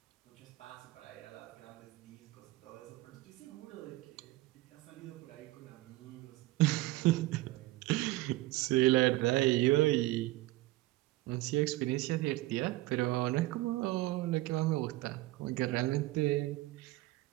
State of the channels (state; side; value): quieter; left; 18.6 dB